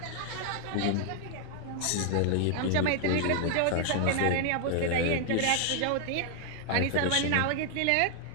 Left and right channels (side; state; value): both; different; correlation 0.00